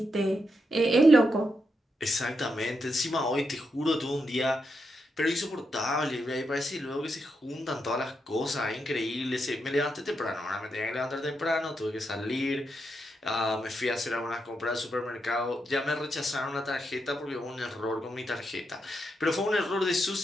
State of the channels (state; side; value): normal; both; correlation 0.83